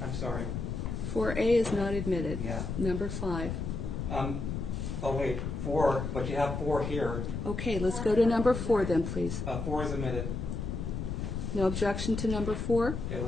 I'm sorry. 4A is not admitted. Yeah. Number 5. Oh, wait, 4, but you have 4 here. Okay, let's go to number 4 then, please. 4 is admitted. No objection to number 4? It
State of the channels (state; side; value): noise; left; rumble, 4 dB below the sound